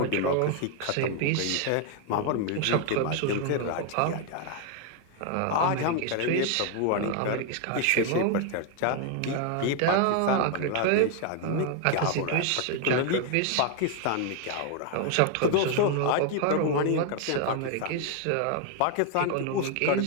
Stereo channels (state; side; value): different; both; correlation 0.00